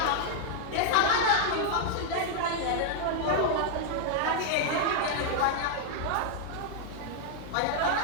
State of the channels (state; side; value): different; both; correlation 0.00